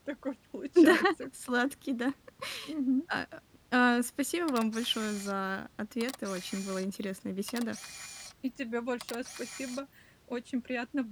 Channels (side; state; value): both; identical; correlation 1.00